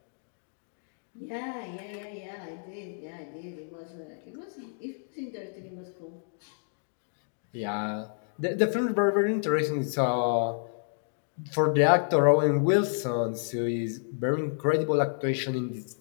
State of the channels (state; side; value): silent; right; digital silence